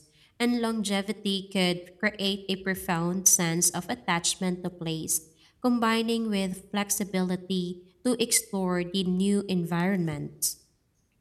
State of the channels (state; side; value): identical; both; correlation 1.00